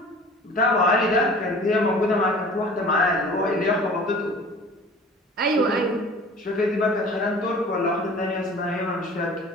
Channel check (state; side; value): normal; both; correlation 0.44